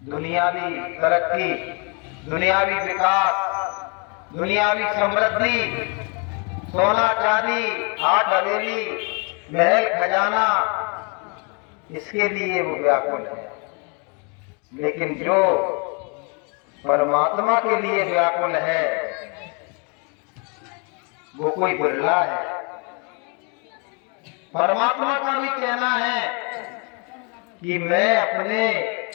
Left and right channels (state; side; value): quieter; right; 35.0 dB